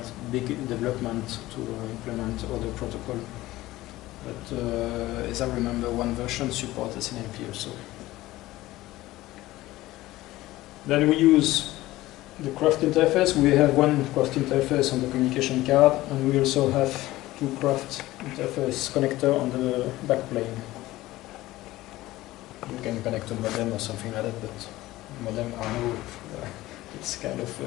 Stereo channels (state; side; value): quieter; right; 17.2 dB